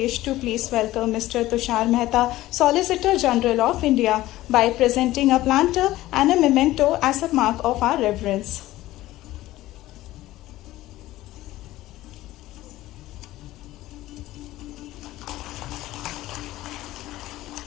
to please welcome Mr. Tushar Mehta, Solicitor General of India, by presenting a planter and a memento as a mark of our reverence.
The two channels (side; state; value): right; quieter; 16.2 dB